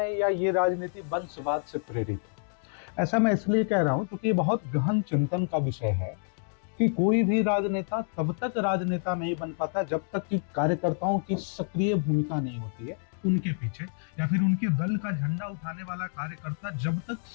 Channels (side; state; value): right; silent; digital silence